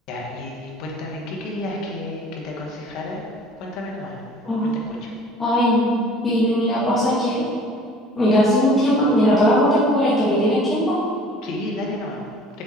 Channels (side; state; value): both; normal; correlation 0.49